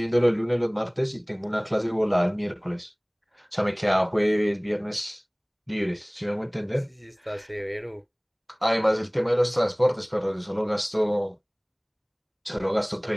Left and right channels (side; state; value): both; identical; correlation 1.00